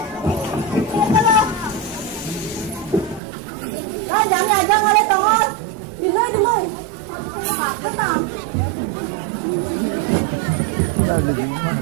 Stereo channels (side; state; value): left; drops out; at 3.2 s